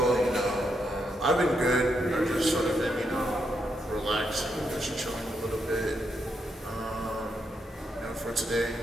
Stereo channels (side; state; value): both; normal; correlation 0.80